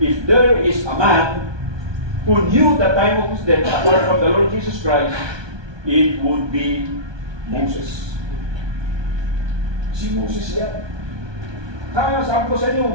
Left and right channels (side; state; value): left; late; 1.2 ms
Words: there is a man who knew the time of his death apart from the Lord Jesus Christ, it would be Moses. Si Moses yan. Kaya sabi ko sa